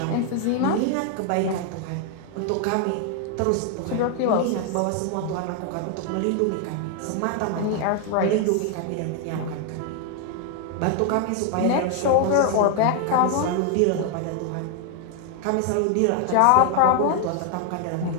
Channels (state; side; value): different; both; correlation 0.00